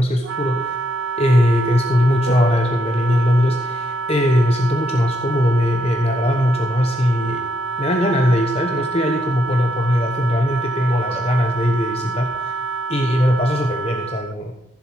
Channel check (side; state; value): both; normal; correlation 0.76